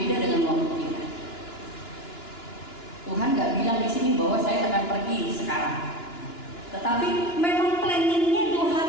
dengan waktu kita. Tuhan nggak bilang di sini bahwa saya akan pergi sekarang, tetapi memang planningnya 2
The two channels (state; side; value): late; right; 2.9 ms